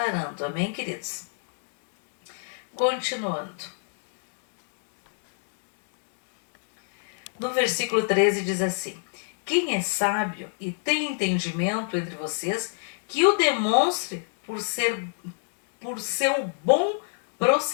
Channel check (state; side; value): silent; right; 60 dB below the other